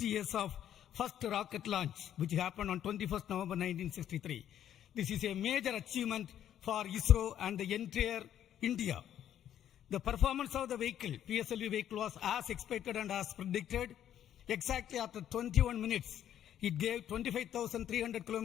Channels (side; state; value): right; quieter; 10.6 dB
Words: years of first rocket launch, which happened on 21st November 1963. This is a major achievement for ISRO and the entire India. The performance of the vehicle, PSLV vehicle, was as expected and as predicted. Exactly after 21 minutes, it gave 25,300